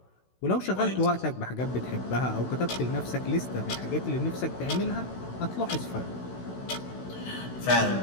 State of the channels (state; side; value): late; right; 16 ms